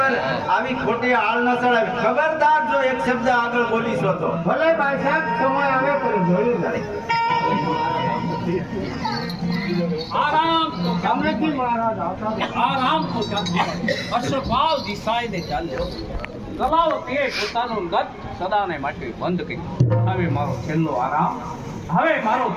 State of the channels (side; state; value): both; identical; correlation 1.00